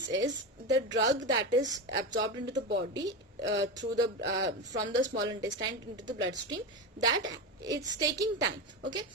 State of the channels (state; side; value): normal; both; correlation 0.19